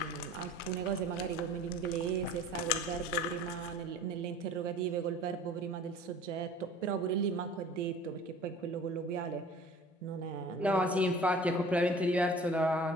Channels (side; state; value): both; normal; correlation 0.45